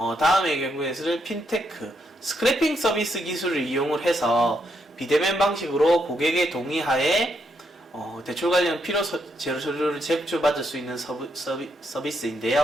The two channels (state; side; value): normal; both; correlation 0.78